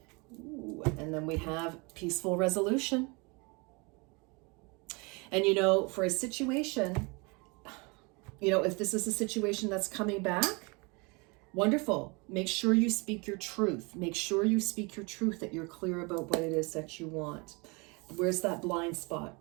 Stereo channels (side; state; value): left; quieter; 29.0 dB